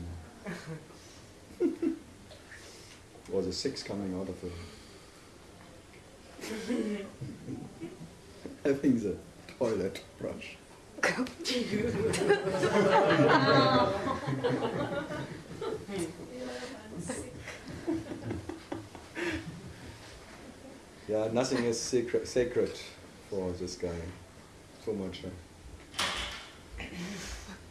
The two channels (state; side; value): identical; both; correlation 1.00